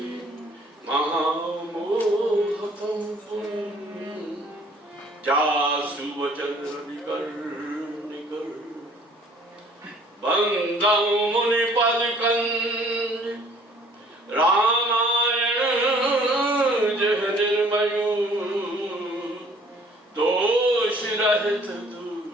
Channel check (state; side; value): normal; both; correlation 0.56